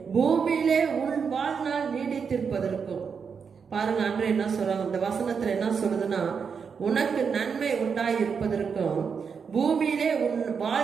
பூமியிலே உன் வாழ்நாள் நீடித்திருப்பதற்கும். பாருங்க, அன்று என்ன சொல்றாங்க, இந்த வசனத்துல என்ன சொல்லுதுன்னா, உனக்கு நன்மை உண்டாயிருப்பதற்கும் பூமியிலே உன்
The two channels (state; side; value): quieter; left; 6.2 dB